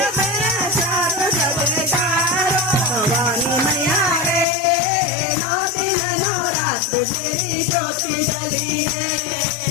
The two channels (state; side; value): drops out; right; at 4.5 s